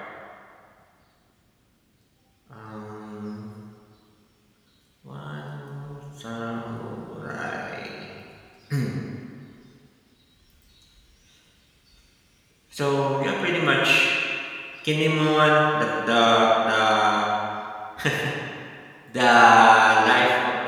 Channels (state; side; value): identical; both; correlation 1.00